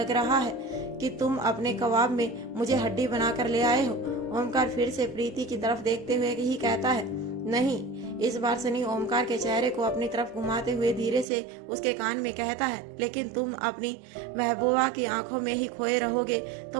रहा है कि तुम अपने कबाब में मुझे हड्डी बनाकर ले आए हो। ओमकार फिर से प्रीति की तरफ देखते हुए ही कहता है, नहीं। इस बार सनी ओमकार के चेहरे को अपनी तरफ घुमाते हुए धीरे से उसके कान में कहता है, लेकिन तुम अपनी महबूबा की आंखों में ही खोए रहोगे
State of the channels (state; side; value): drops out; left; at 11.2 s